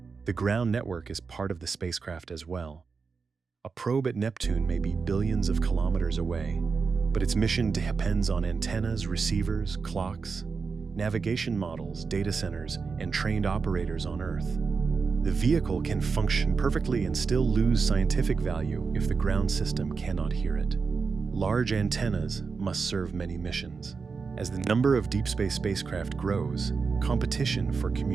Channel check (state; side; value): quieter; left; 5.0 dB